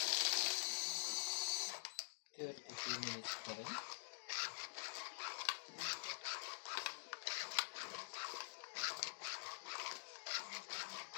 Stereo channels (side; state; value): right; silent; digital silence